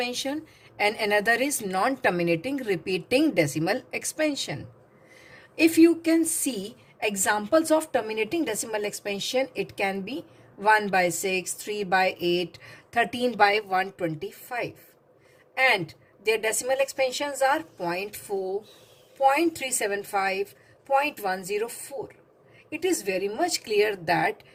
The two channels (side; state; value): both; identical; correlation 1.00